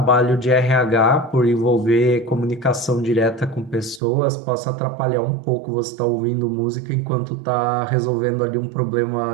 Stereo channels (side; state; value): left; drops out; at 4.0 s